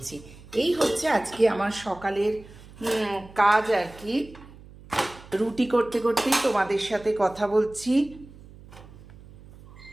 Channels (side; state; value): right; noise; hum, 20 dB below the sound